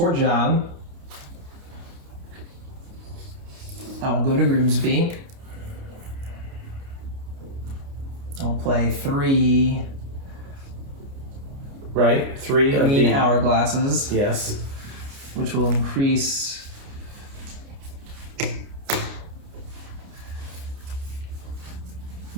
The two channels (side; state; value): left; late; 29 ms